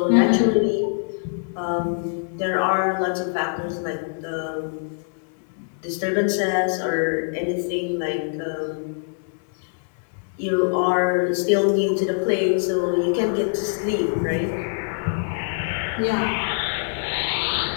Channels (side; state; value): right; silent; 58 dB below the other